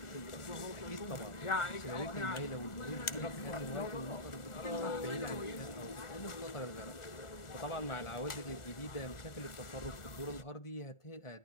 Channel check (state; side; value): late; right; 1.4 ms